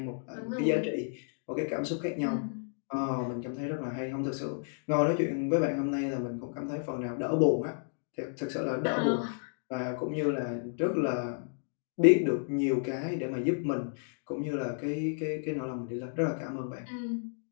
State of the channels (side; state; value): right; silent; digital silence